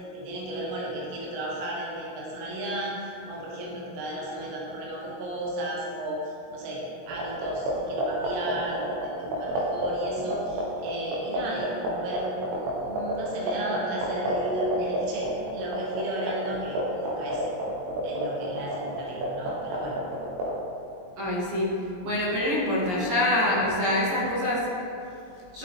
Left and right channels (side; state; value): left; late; 22 ms